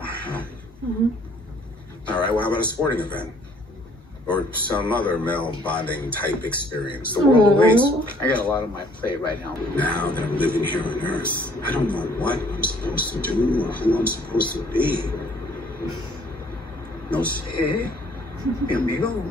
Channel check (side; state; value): both; normal; correlation 0.60